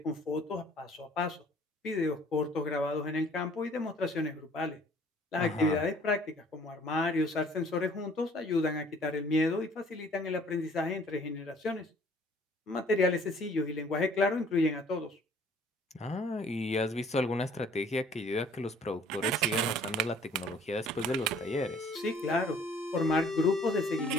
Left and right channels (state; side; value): normal; both; correlation 0.56